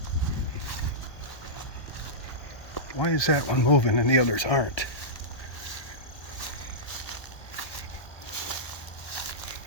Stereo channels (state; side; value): late; right; 1.2 ms